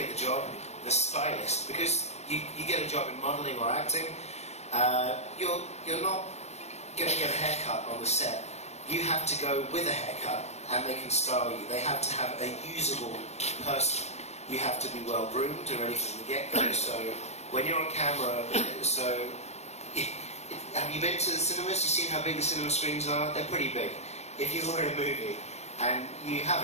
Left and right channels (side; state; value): right; late; 0.32 ms